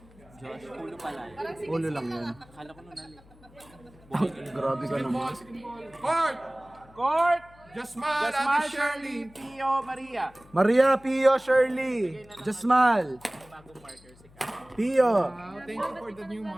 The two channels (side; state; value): left; noise; hum, 25 dB below the sound